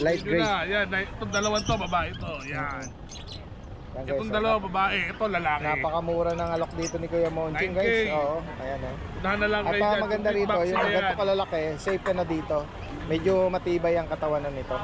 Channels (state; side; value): identical; both; correlation 1.00